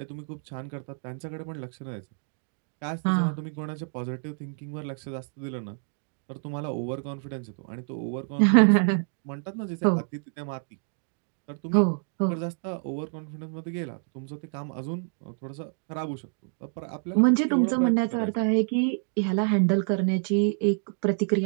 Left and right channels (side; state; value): left; silent; 59 dB below the other